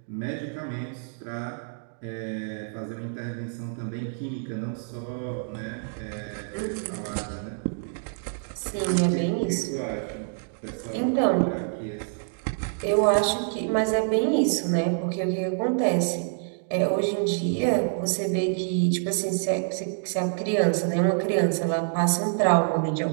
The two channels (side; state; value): left; silent; digital silence